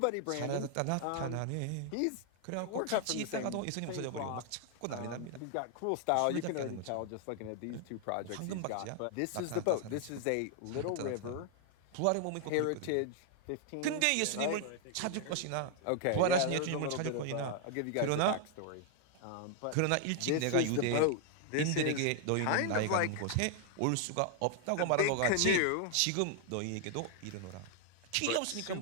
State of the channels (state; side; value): different; both; correlation 0.00